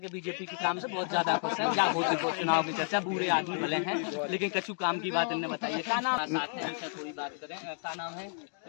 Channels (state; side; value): silent; right; 57 dB below the other